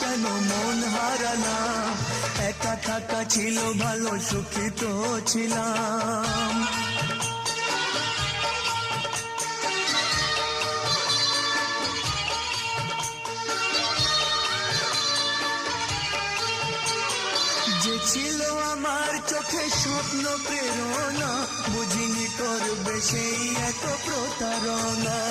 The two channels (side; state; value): both; identical; correlation 1.00